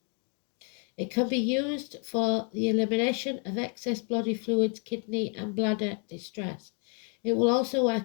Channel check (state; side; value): quieter; right; 37.6 dB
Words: It can be used for the elimination of excess body fluids, kidney and bladder distress. It will also